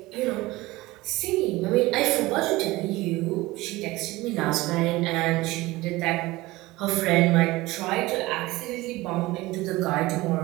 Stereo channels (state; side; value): quieter; left; 19.7 dB